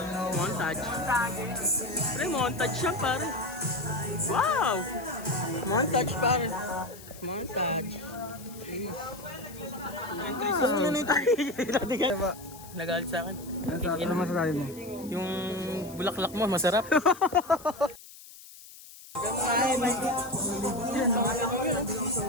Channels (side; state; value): left; noise; hiss, 18 dB below the sound